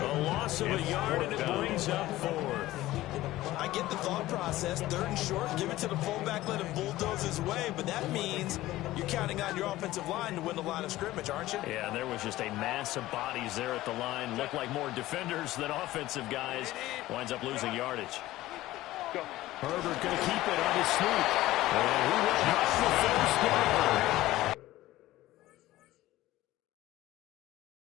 loss of a yard, and it brings up 4th. I get the thought process. 3rd and short, give it to the fullback, let him bulldoze his way. But that means you're counting on your offensive line to win the line of scrimmage, aren't you? Yeah, and there was just a mass of bodies there at the line. Looked like more defenders than offensive guys. Winds up losing yardage. Herbert going to keep it on his sneak. And he will have the first down.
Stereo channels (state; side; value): quieter; right; 16.4 dB